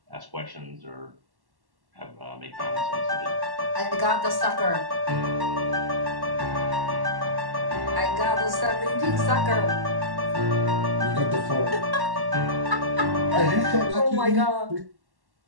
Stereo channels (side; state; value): left; late; 1.1 ms